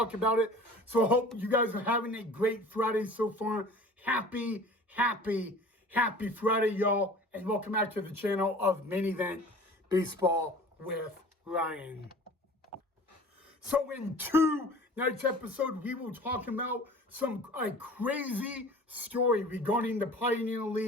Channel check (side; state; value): both; normal; correlation 0.43